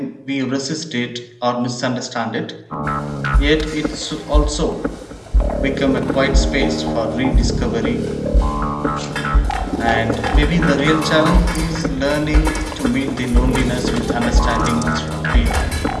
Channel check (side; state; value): both; identical; correlation 1.00